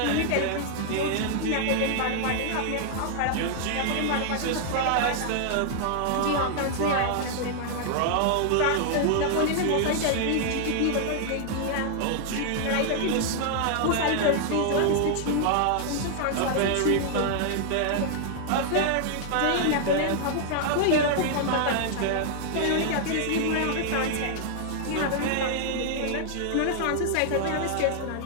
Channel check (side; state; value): both; different; correlation -0.01